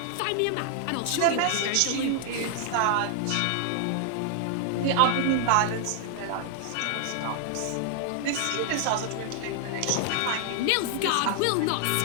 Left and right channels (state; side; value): different; both; correlation 0.00